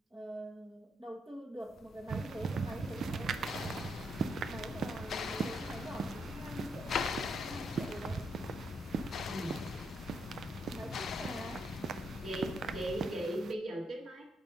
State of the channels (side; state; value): both; normal; correlation 0.77